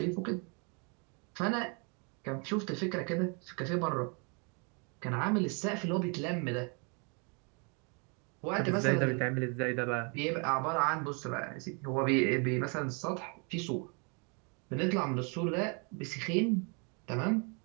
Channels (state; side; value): quieter; left; 35.0 dB